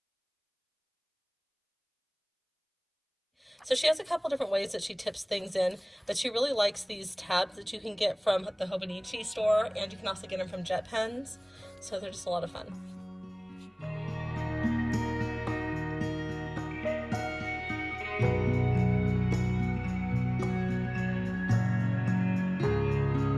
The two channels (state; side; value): identical; both; correlation 1.00